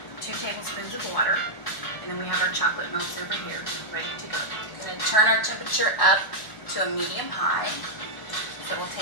2 tablespoons of water, and then we have our chocolate melts over here, ready to go. We're going to turn our temperature up to a medium high. So we'll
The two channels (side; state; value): right; late; 1.8 ms